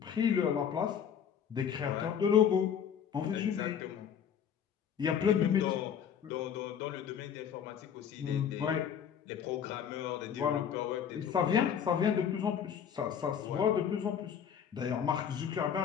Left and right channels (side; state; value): right; quieter; 8.2 dB